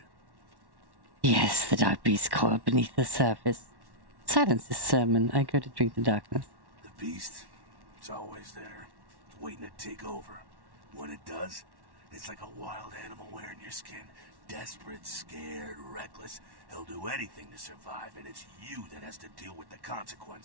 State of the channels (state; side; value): late; left; 1.1 ms